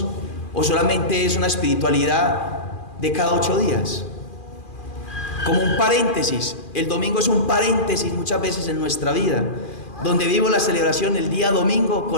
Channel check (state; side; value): late; right; 2.4 ms